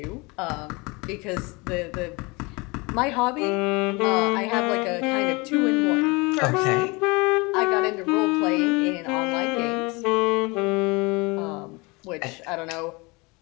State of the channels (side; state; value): right; quieter; 26.3 dB